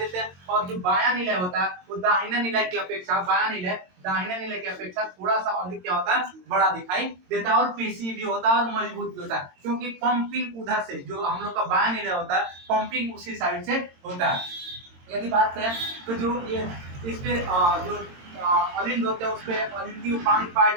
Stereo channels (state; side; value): late; left; 22 ms